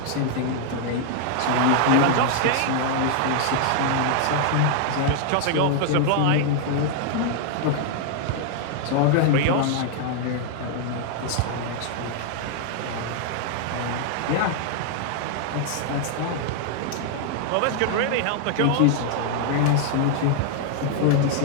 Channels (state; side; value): different; both; correlation 0.00